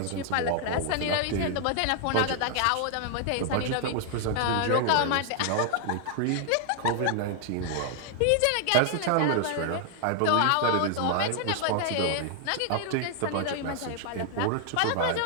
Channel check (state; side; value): different; both; correlation 0.00